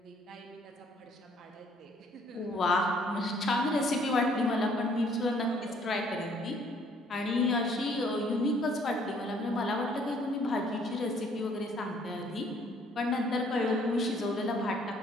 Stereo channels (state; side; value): normal; both; correlation 0.62